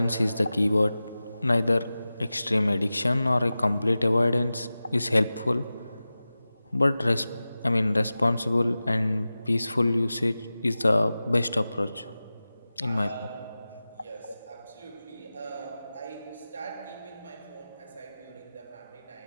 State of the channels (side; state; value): both; inverted; correlation -0.95